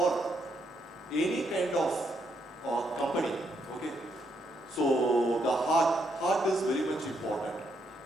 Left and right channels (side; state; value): both; normal; correlation 0.77